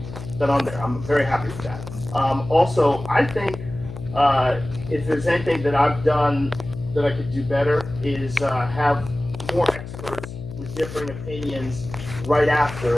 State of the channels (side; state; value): left; noise; hum, 11 dB below the sound